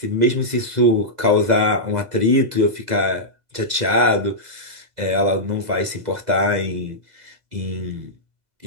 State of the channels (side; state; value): left; late; 2.0 ms